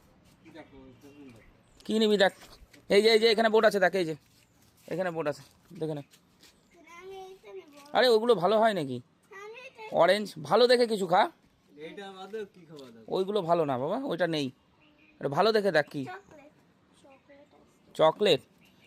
কী নিবি দেখ, এই যে এখানে বোর্ড আছে, দেখ এই যে এখানে বোর্ড আছে, দেখে নে। আরে ওগুলো ভালো হয় নাকি? অরেঞ্জ ভালো দেখে কিছু খা, ওইগুলো ভালো না বাবা, ওইটা নেই। ভালো দেখে দেখ কি চকলেট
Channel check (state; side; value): identical; both; correlation 1.00